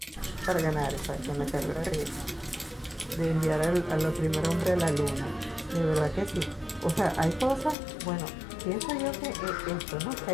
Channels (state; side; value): drops out; right; at 7.8 s